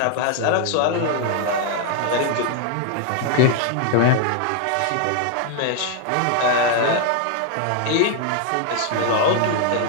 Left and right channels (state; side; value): different; both; correlation 0.00